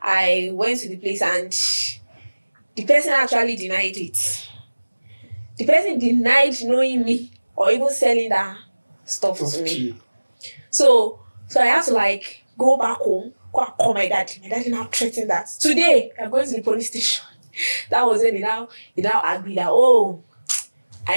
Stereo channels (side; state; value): both; inverted; correlation -1.00